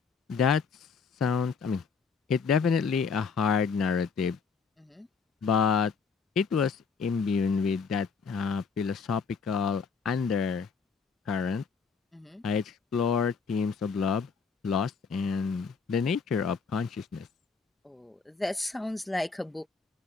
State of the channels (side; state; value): right; quieter; 5.5 dB